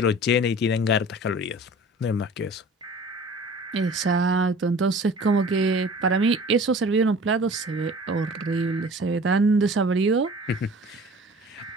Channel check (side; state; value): both; normal; correlation 0.44